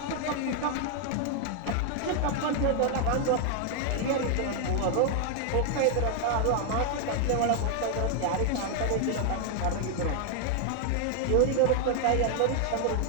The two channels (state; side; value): different; both; correlation 0.00